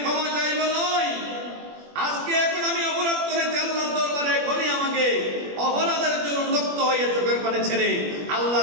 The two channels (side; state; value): left; late; 21 ms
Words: ক্ষমা চাইব নয়, আজকে এখন আমি অপরাধ করেছি আল্লাহর দরবারে, এখনই আমাকে অপরাধের জন্য উন্মুক্ত হয়ে চোখের পানি ছেড়ে